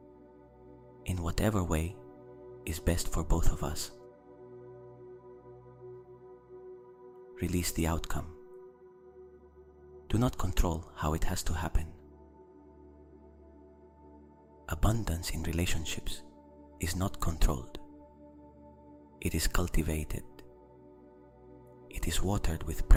in whatever way is best for both of us. Release the outcome. Do not control how it has to happen. Abundance in relationships is not controlled. It is cultivated. It is watered with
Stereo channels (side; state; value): both; identical; correlation 1.00